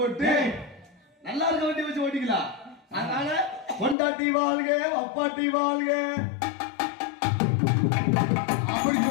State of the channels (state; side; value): drops out; right; at 4.0 s